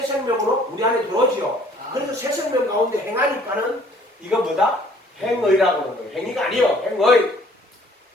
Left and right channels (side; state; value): both; normal; correlation 0.57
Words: 생명으로 우리 안에 들어오지요. 그래서 새 생명 가운데 행하니까는 이거 뭐다? 행의라고 하는 거예요. 행위가 아니요. 행의.